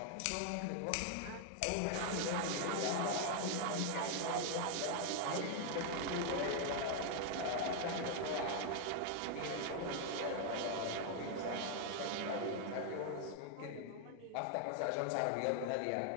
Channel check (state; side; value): different; both; correlation 0.00